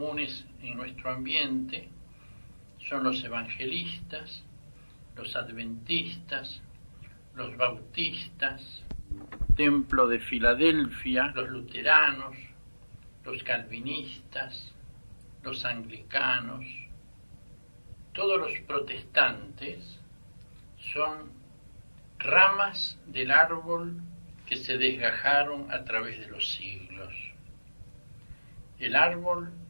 en nuestro ambiente son los evangelistas, los adventistas, los bautistas, Templo de Filadelfia, los luteranos, los calvinistas, los anglicanos. Todos los protestantes son ramas del árbol que se desgajaron a través de los siglos. El árbol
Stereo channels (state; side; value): inverted; both; correlation -1.00